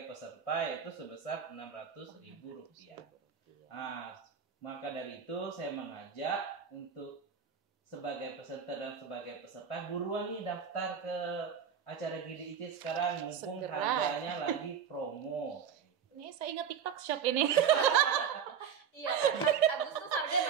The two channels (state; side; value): quieter; left; 7.5 dB